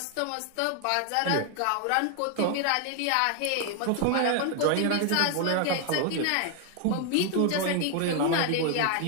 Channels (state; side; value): different; both; correlation 0.00